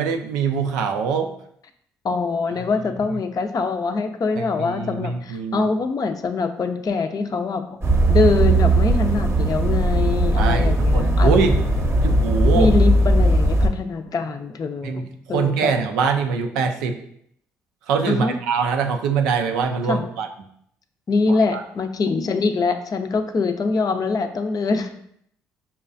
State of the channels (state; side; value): normal; both; correlation 0.70